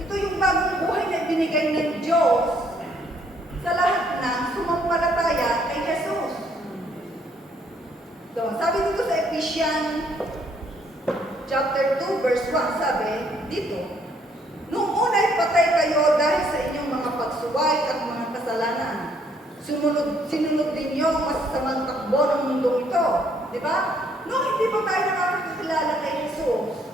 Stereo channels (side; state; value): both; normal; correlation 0.67